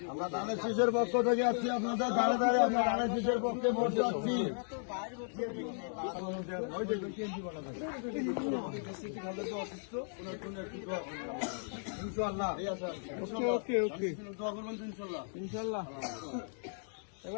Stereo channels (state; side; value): silent; right; 54 dB below the other